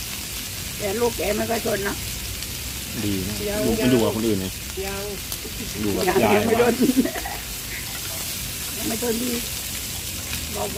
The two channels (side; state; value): both; identical; correlation 1.00